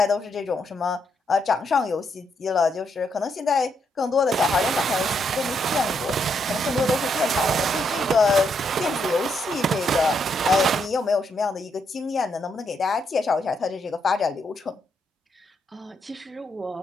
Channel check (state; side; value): normal; both; correlation 0.77